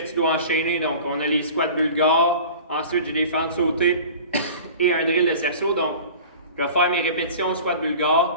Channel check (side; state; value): both; inverted; correlation -0.40